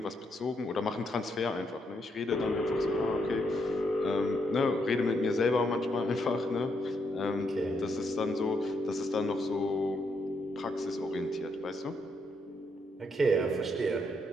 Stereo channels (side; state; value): both; normal; correlation 0.77